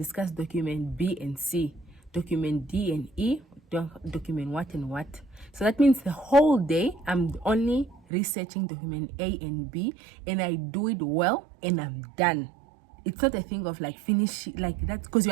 document B and C. document D and E, document what and what. So that means the whole day I'm only researching document A and B, and I do it well and I'm done. It's not a thing of like finish like that, because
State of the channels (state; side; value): drops out; left; at 8.0 s